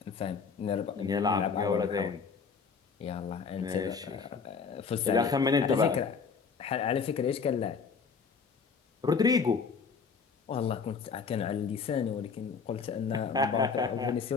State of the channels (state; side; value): quieter; right; 5.5 dB